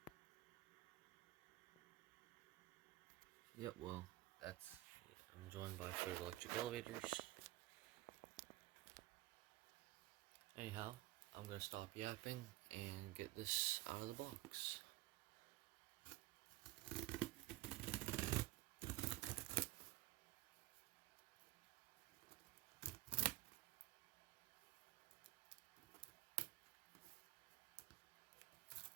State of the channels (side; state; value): left; quieter; 18.0 dB